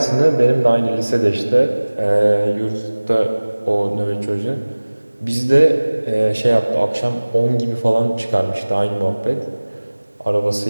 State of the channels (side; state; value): both; inverted; correlation -1.00